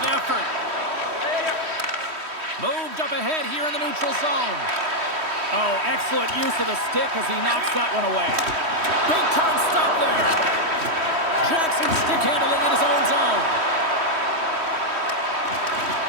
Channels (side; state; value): left; late; 3.1 ms